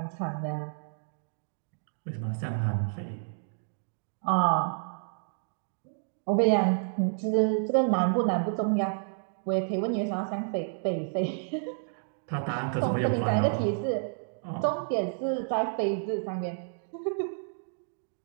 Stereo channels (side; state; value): left; silent; digital silence